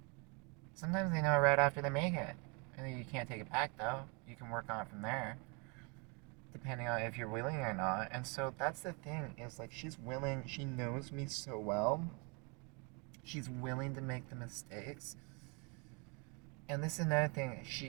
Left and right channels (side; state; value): left; quieter; 32.3 dB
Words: Sometimes they know it right after they make it. And you can't take it back, though. You can work on it from there, depending on if you're willing or not. And so that's the thing, is like she's willing, she knows me so well. She's willing to make the mistakes. And this is another thing,